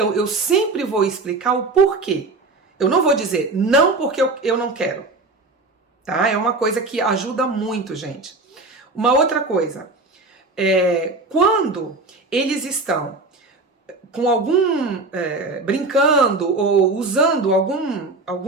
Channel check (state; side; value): quieter; left; 3.4 dB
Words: eu sempre vou explicar o porquê. Eu não vou dizer não porque eu não quero, tá? É uma coisa que ajuda muito, gente. Uma outra coisa, quando eles estão com brincando ou usando